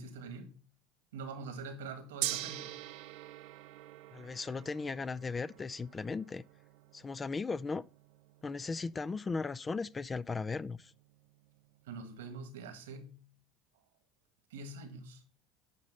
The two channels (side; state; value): both; normal; correlation 0.66